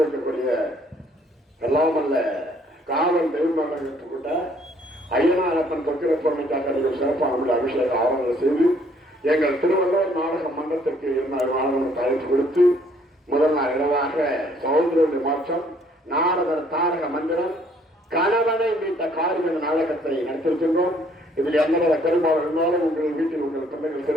எல்லாம் அல்ல காவல் தெய்வமாக கொண்ட ஐயனாரப்பன் தொக்கிர பொருளுக்காக சிறப்பான அபிஷேக ஆவணங்கள் செய்து எங்கள் திருவள்ளுவர் நாடக மன்றத்திற்கு 2 நாடகம் அழைப்பு கொடுத்து முதல் நாள் இரவாக சகோதரருடைய மாற்றம் நாடக தாரக மந்திரம் கணவனை மீட்ட காரியம் நாடகத்தை நடத்திருக்கின்றோம். இதில் எந்தவித பெரும்பாலும் இருந்தாலும் உங்கள் வீட்டில் உங்கள் பிள்ளைகள்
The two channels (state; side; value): normal; both; correlation 0.63